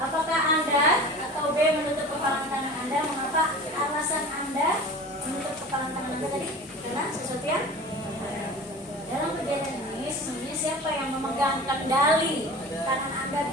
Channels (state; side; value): normal; both; correlation 0.37